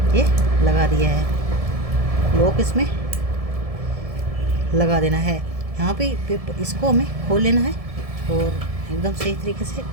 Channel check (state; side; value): late; left; 1.7 ms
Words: ये लगा दिया है लॉक, इसमें लगा देना है। यहाँ पे इसको हमें खोल लेना है और एकदम सही तरीके से